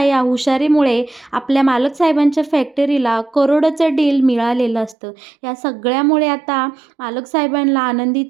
या हुशारीमुळे आपल्या मालक साहेबांच्या फॅक्टरीला करोडोचं डील मिळालेलं असतं. या सगळ्यामुळे आता मालक साहेबांना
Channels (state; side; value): drops out; left; at 5.0 s